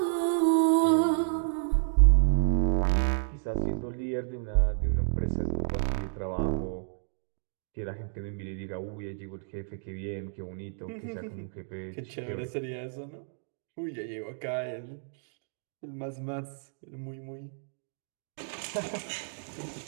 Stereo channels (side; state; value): left; silent; digital silence